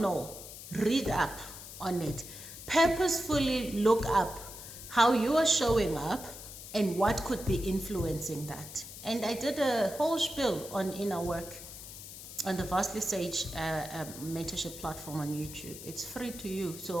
know, read up on it. Purposefully look up how you are showing up and what could be influencing that. And I did a whole spiel on inner work on the Vastly Sage mentorship platform on YouTube. It's free to you,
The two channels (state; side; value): noise; left; hiss, 13 dB below the sound